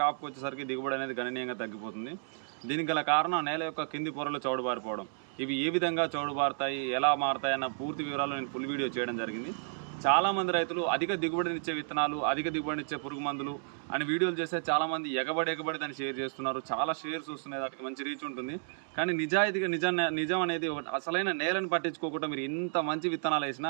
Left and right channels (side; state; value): left; silent; digital silence